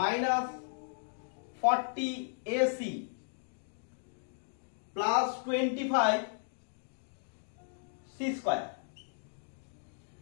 40ac plus 25c square.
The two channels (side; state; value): right; silent; digital silence